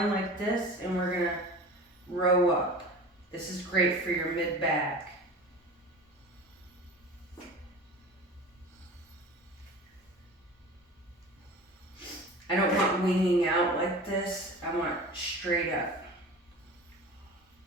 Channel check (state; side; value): normal; both; correlation 0.37